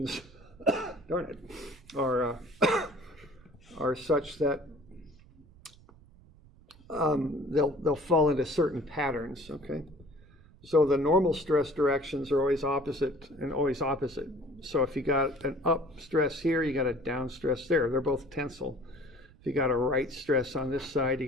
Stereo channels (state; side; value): noise; right; rumble, 25 dB below the sound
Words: darn it, are such that they'll fall into certain patterns, okay? So the normal stress directions are always opposite and always opposite. So if you got an up stress here, you got a down stress there. They're both tensile. If you got a right stress on this side, you